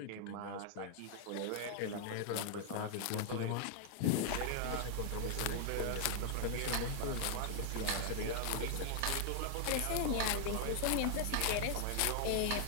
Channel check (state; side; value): different; both; correlation 0.00